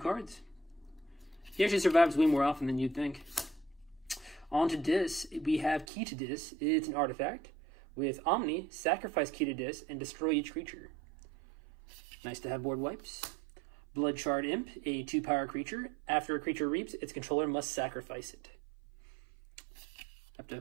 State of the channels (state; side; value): drops out; left; at 5.9 s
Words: He actually survives way more often than you'd think. On to Dis, we have Key to Dis. It's an artifact. With Omni, sacrifice Key to Dis and destroy each creature. Nice to have board wipes. Bloodshard Imp, a 2-power creature. After a creature reaps, its controller must sacrifice it. Have to